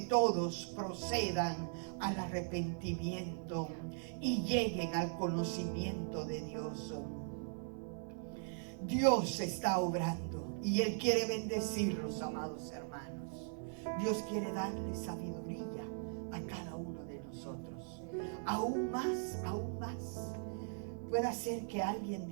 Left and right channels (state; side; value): silent; left; 51 dB below the other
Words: todos procedan al arrepentimiento y lleguen al conocimiento de Dios. Dios está obrando y Él quiere bendecirlos, amados hermanos. Dios quiere darle sabiduría a cada uno de nosotros. Aún más. Puede ser que alguien